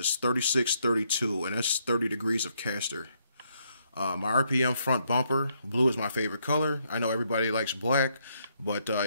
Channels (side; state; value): both; inverted; correlation -0.74